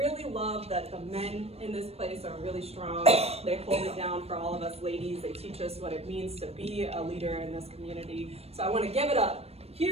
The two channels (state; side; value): late; left; 0.29 ms